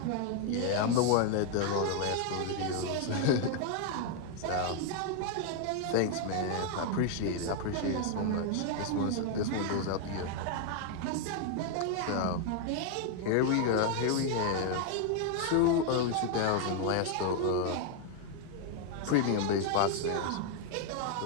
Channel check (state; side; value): different; both; correlation 0.00